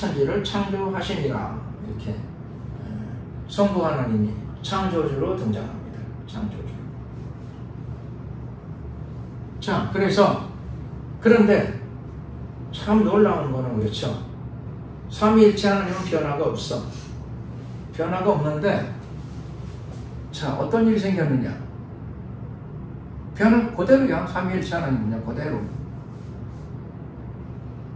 창조하시니라 이렇게 성부 하나님이 창조주로 등장합니다. 창조주. 자, 그런데 참 놀라운 거는 그렇죠. 삼위일체 하나님은 변화가 없어. 변화가 없는데 자, 어떤 일이 생겼느냐? 변화 그대로야. 삼위일체 하나님은요, 그대로.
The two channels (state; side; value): identical; both; correlation 1.00